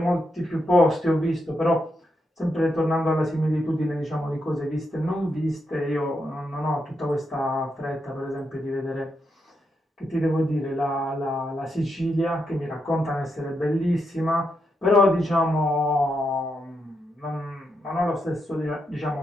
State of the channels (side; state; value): both; normal; correlation 0.83